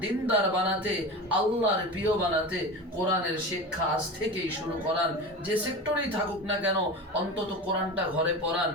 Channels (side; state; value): both; normal; correlation 0.29